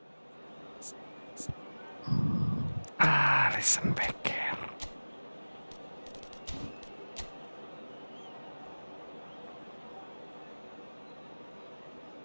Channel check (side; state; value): both; inverted; correlation -1.00